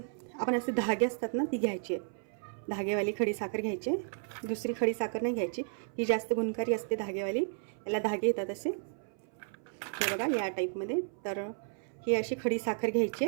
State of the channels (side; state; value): left; silent; 56 dB below the other